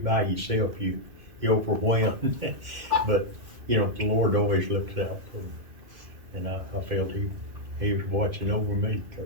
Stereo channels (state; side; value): late; left; 2.1 ms